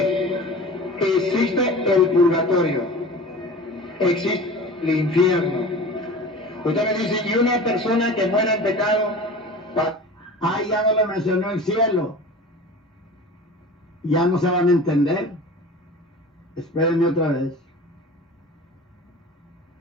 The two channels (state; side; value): normal; both; correlation 0.37